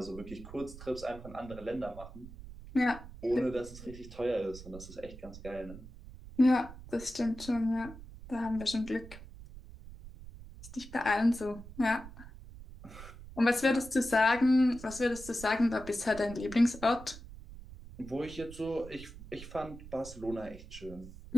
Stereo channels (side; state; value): right; noise; rumble, 15 dB below the sound